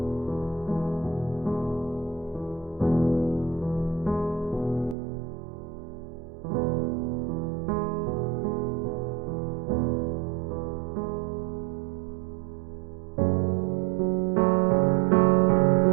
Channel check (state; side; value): drops out; left; at 5.0 s